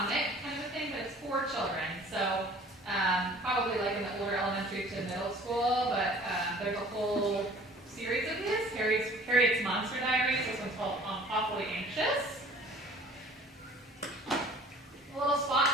kind of a thing, but it's for children. So probably like in the older elementary to middle school, but there's a whole series of this. Harriet's Monster Diaries. This one's called Awfully Anxious. A little spot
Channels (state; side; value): normal; both; correlation 0.50